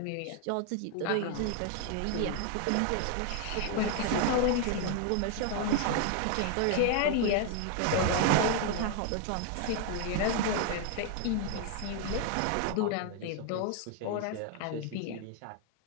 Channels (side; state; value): both; different; correlation 0.00